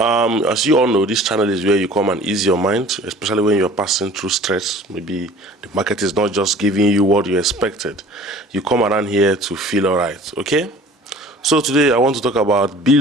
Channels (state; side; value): normal; both; correlation 0.47